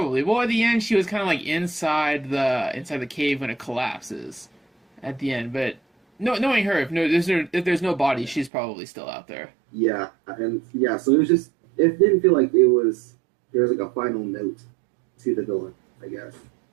Well, at the end, she was kind of like inside the cave when it collapses at the end. But no, knowing her, if there's no body, she's probably still out there. Yeah, and yeah, so it didn't feel like there was like a final note to the villain, I guess.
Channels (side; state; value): left; drops out; at 8.5 s